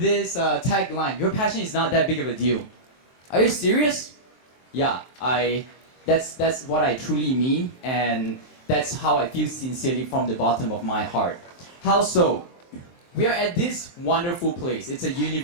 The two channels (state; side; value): late; right; 23 ms